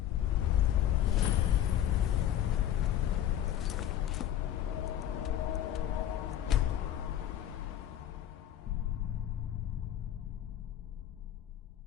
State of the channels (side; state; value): right; quieter; 11.3 dB